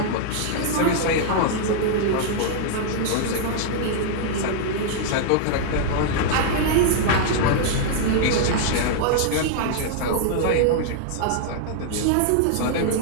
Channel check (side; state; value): both; different; correlation -0.01